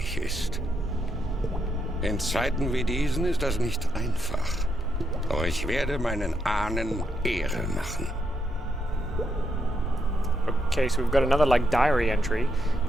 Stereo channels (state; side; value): normal; both; correlation 0.79